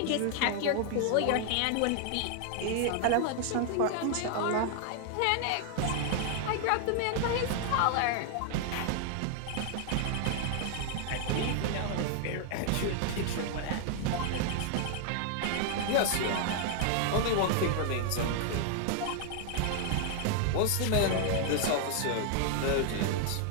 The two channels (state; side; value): different; both; correlation 0.00